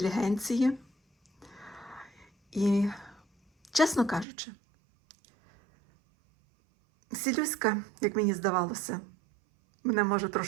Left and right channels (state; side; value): drops out; left; at 4.2 s